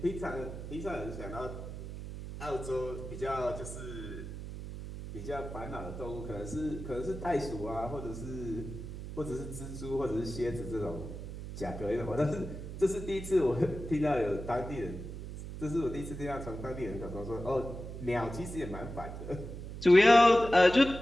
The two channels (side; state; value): right; noise; hum, 9 dB below the sound